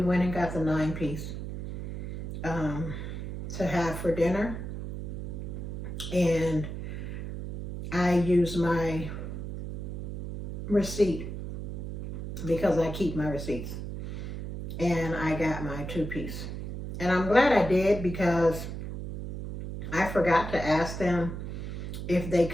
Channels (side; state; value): right; noise; hum, 7 dB below the sound